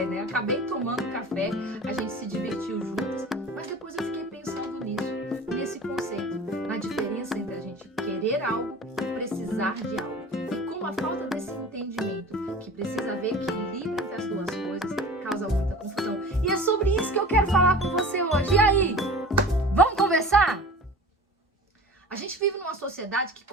né? Acabei tomando café, a gente se divertiu juntas. Mas depois eu fiquei pensando nisso, nesse conceito, na diferença entre a gente querer algo e precisar de algo. A falta desse entendimento, que precisa haver equilíbrio entre as duas coisas, causa muita confusão. E é sobre isso que eu quero falar com você hoje. E aí? Vamos conversar? A gente vive numa sociedade que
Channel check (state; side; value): normal; both; correlation 0.39